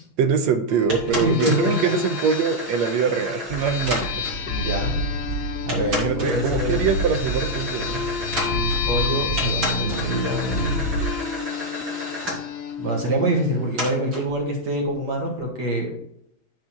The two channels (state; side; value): late; left; 6.1 ms